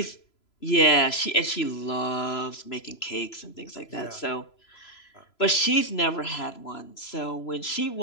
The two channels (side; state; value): right; late; 3.0 ms